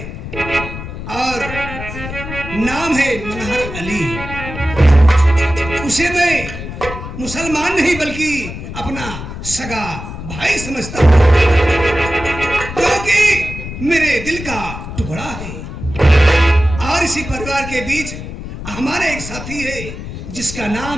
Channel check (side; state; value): left; noise; rumble, 9 dB below the sound